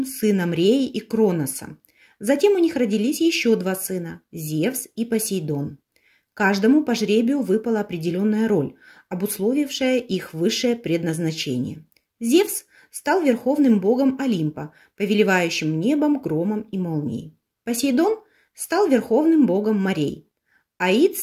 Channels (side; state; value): both; identical; correlation 1.00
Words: сыном Реи и Кроноса. Затем у них родились еще два сына – Зевс и Посейдон. Каждому по жребию выпала определенная роль, обусловившая их высшее предназначение. Зевс стал верховным богом Олимпа, повелевающим небом, громом и молнией. Посейдон стал верховным богом морей. Аид